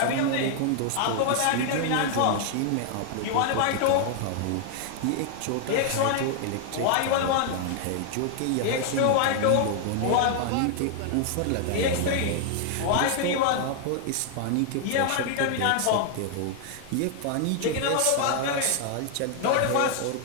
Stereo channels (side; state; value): both; different; correlation 0.00